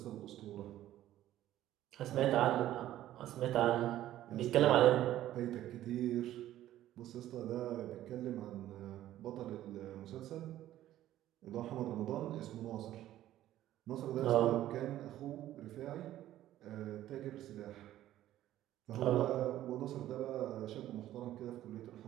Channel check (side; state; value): left; quieter; 13.4 dB